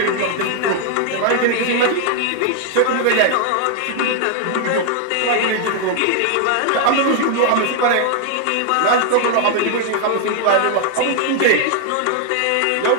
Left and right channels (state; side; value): different; both; correlation 0.00